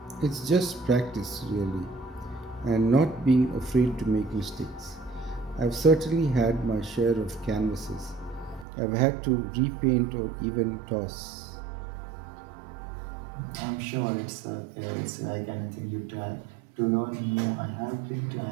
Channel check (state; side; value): drops out; left; at 8.7 s